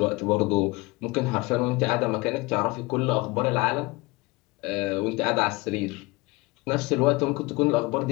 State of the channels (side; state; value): right; quieter; 23.7 dB